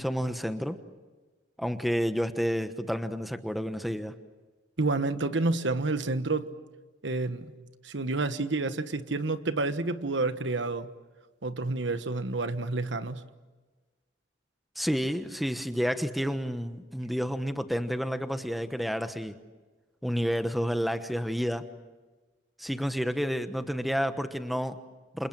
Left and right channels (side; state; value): both; normal; correlation 0.68